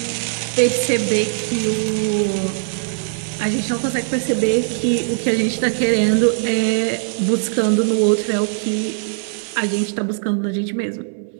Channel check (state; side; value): silent; left; digital silence